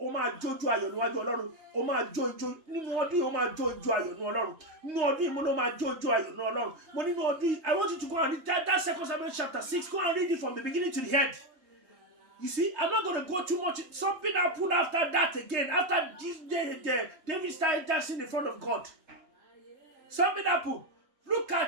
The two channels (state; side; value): late; left; 3.2 ms